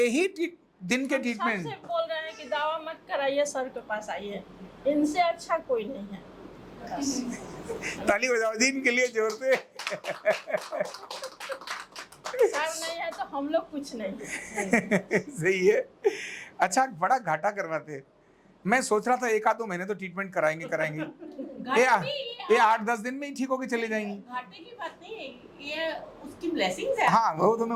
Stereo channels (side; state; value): both; identical; correlation 1.00